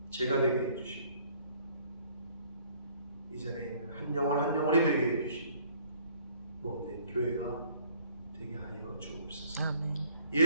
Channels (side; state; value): both; inverted; correlation -0.59